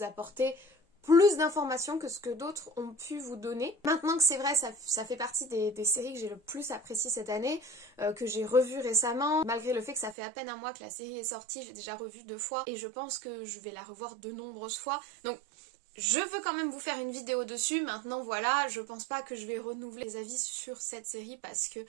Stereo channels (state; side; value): drops out; left; at 10.2 s